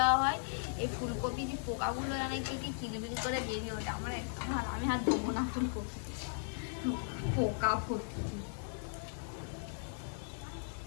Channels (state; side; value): silent; right; digital silence